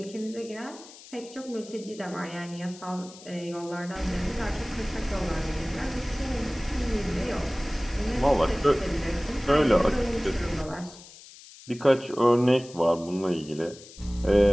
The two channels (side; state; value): left; noise; hiss, 19 dB below the sound